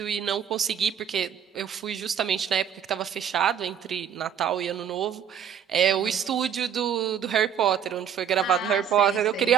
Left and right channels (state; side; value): quieter; left; 8.5 dB